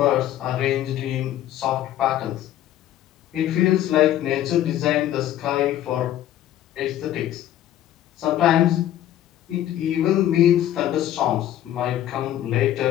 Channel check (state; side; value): quieter; right; 12.3 dB